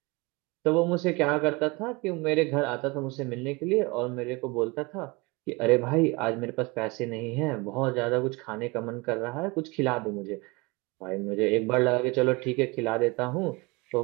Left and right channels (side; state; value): left; quieter; 25.8 dB